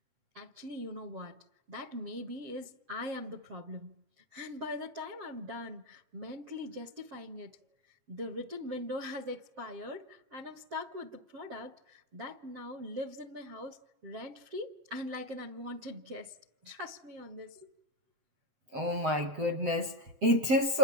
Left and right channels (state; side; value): late; left; 7.8 ms